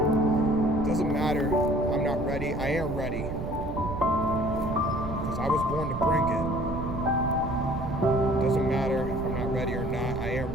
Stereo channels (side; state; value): right; noise; rumble, 6 dB below the sound